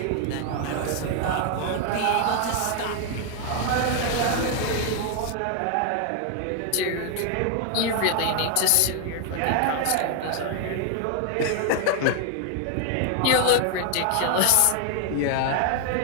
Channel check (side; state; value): both; different; correlation 0.01